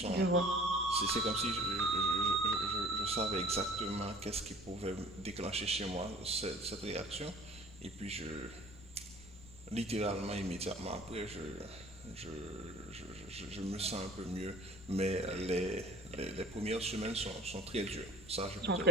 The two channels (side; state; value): left; noise; rumble, 18 dB below the sound